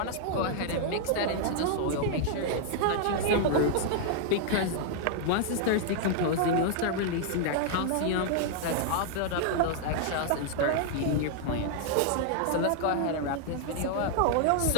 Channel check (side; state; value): both; different; correlation -0.01